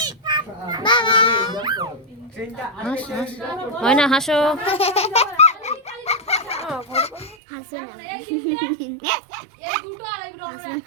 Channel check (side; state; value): left; drops out; at 7.4 s